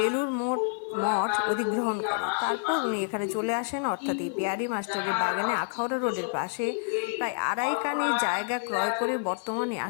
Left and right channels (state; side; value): silent; right; digital silence